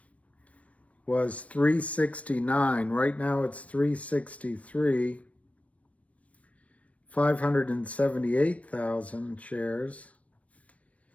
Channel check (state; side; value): late; right; 0.065 ms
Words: was 369. Right now it's 363. 578,000 shares.